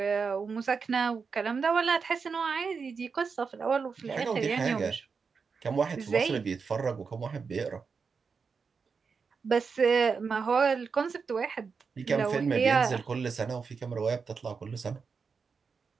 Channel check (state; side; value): quieter; left; 5.4 dB